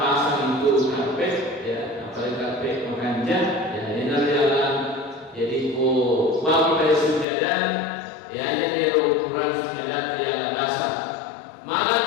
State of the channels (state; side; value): drops out; right; at 7.2 s